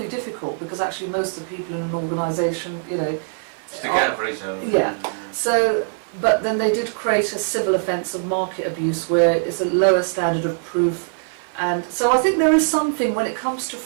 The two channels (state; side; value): silent; left; digital silence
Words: difficult because actually most of the people in an organisation, you know, Stick out for each other. Yeah. So, but then they did create a civil offence of market abuse where it's a lower standard of proof. And so I think there is something when it comes to